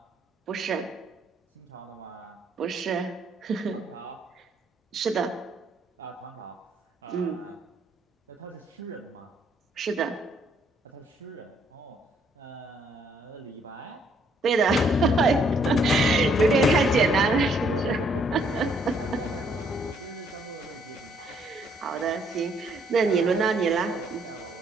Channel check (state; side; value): normal; both; correlation 0.68